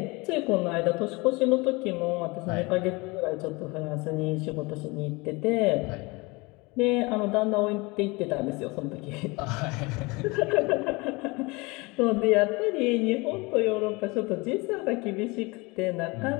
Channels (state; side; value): quieter; right; 25.4 dB